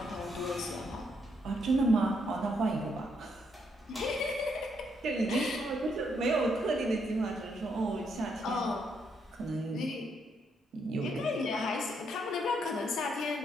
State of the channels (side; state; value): both; normal; correlation 0.75